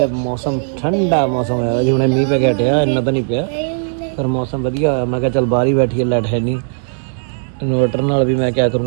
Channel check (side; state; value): left; silent; digital silence